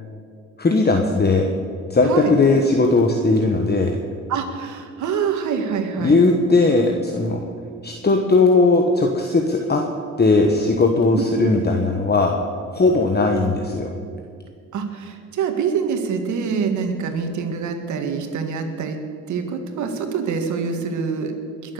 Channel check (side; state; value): both; normal; correlation 0.37